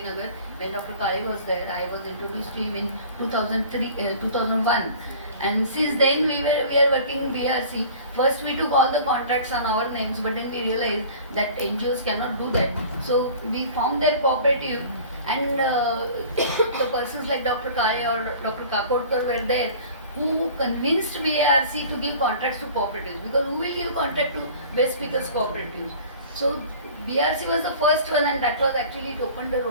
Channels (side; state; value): both; inverted; correlation -0.44